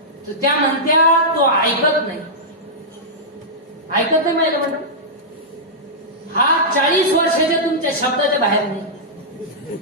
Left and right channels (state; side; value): normal; both; correlation -0.11